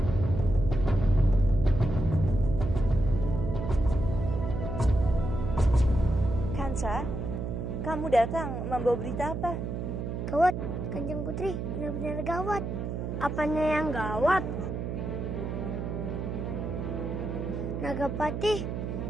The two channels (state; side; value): noise; right; hum, 4 dB below the sound